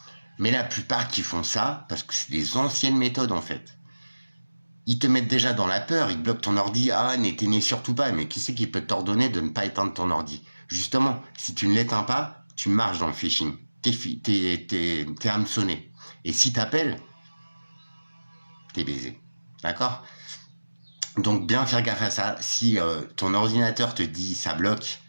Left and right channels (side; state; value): both; inverted; correlation -1.00